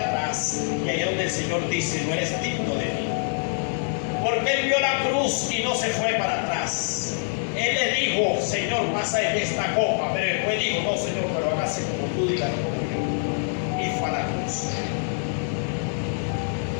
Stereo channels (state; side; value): silent; right; 62 dB below the other